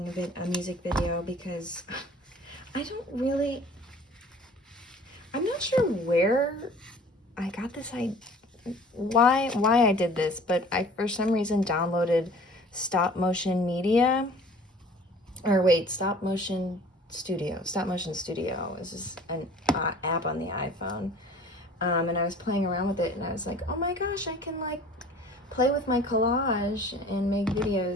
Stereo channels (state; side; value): normal; both; correlation 0.48